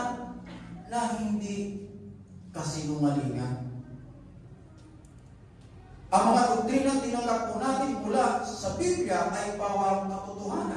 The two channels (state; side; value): identical; both; correlation 1.00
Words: na hindi kasinungalingan. Ang mga doktrinang tinanggap po natin mula sa Biblia ay pawang